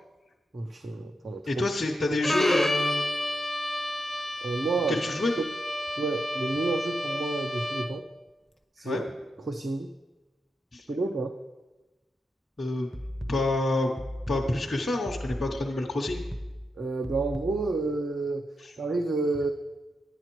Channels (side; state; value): both; normal; correlation 0.86